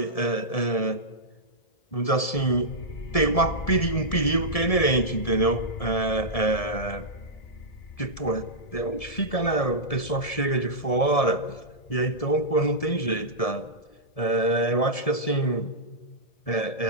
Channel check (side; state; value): right; late; 1.7 ms